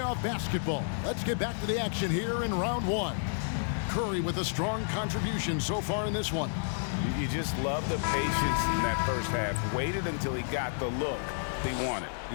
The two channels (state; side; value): silent; right; 57 dB below the other